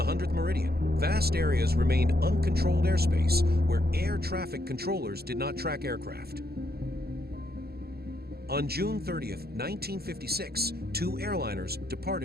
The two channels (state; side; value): late; left; 0.46 ms